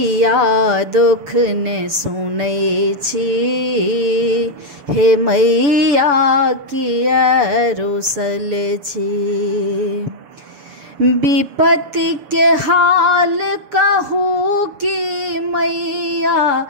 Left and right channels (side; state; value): left; late; 7.0 ms